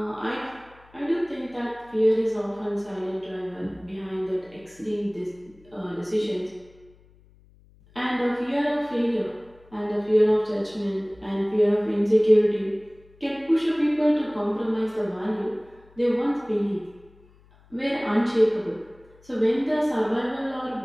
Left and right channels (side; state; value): left; noise; hum, 28 dB below the sound